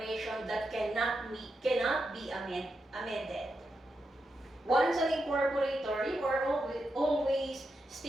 that cannot be amended. Once an incorporator, you are always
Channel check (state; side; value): normal; both; correlation 0.86